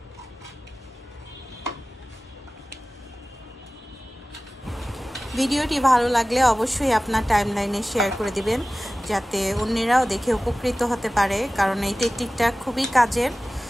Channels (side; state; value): both; normal; correlation 0.97